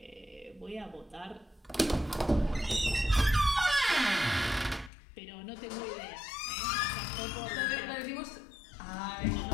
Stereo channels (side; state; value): right; drops out; at 4.9 s